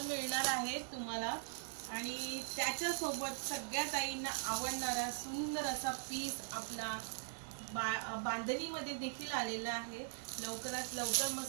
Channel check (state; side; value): silent; left; digital silence